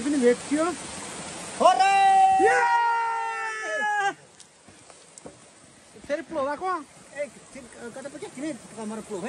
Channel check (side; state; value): both; identical; correlation 1.00